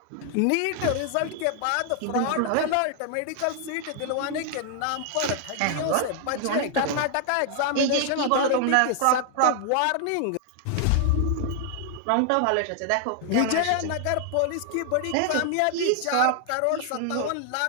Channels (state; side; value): different; both; correlation 0.00